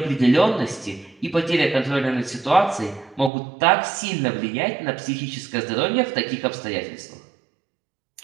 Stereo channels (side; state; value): left; drops out; at 3.3 s